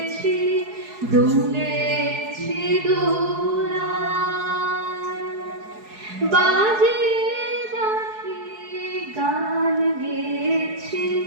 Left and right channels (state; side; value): late; left; 4.7 ms